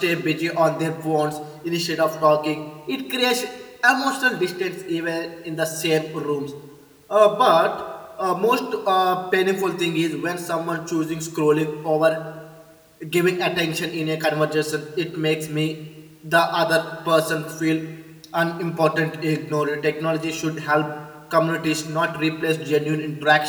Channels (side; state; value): both; identical; correlation 1.00